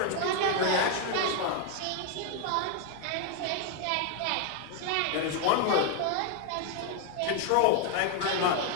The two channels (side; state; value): both; different; correlation 0.01